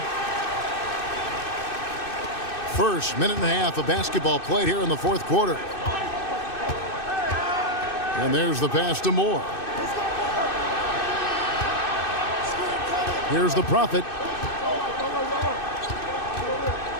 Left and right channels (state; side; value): late; right; 2.6 ms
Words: First minute and a half of basketball played here in the fourth quarter. And there's the pass to Moore. Here's the Prophet.